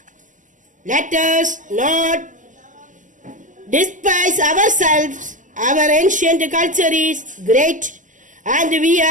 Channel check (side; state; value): left; late; 0.37 ms